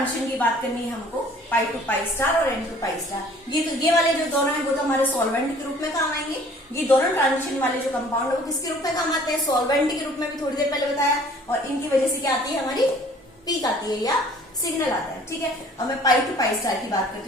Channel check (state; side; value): normal; both; correlation 0.53